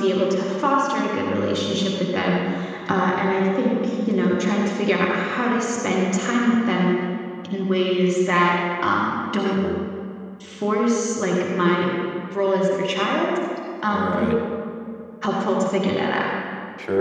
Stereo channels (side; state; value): both; identical; correlation 1.00